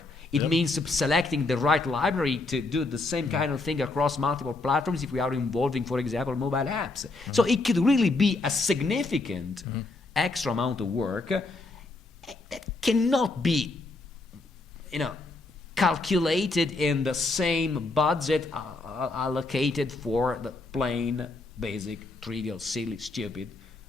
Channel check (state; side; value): quieter; right; 3.3 dB